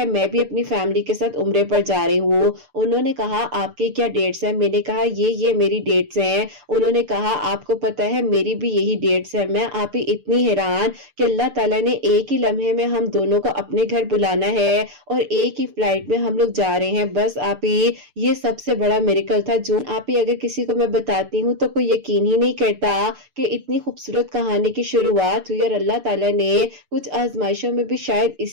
میں بھی اپنی فیملی کے ساتھ عمرے پر جا رہی ہوں. انہوں نے کہا آپ کی کیا ڈیٹس ہیں؟ میں نے کہا یہ میری ڈیٹس ہیں. انہوں نے کہا آپ کو پتا ہے میری بھی یہی ڈیٹس ہیں. میں آپ ہی اتنی حیران کہ اللہ تعالیٰ نے ایک ہی لمحے میں ہم دونوں کو اپنے گھر بلانا ہے اور ایک ہی فلائٹ میں ہم لوگ جا رہے ہیں. بس آپ ہی یہ سب سے بڑا میریکل تھا جو آپ ہی اگر کسی کو میں بتاتی ہوں تو کوئی یقین ہی نہیں کرتا کہ اتنی خوبصورت کہانی کی شروعات ہوئی. اور اللہ تعالیٰ نے کچھ آزمائشوں میں بھی شاید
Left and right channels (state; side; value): late; left; 6.8 ms